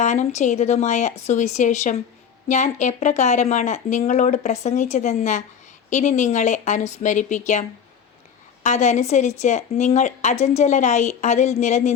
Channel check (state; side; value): quieter; right; 7.6 dB